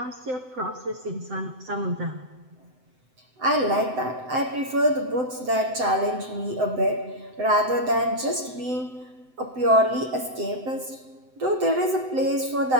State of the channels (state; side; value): late; left; 7.8 ms